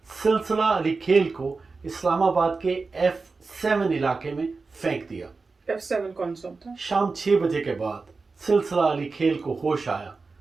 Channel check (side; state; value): left; quieter; 4.2 dB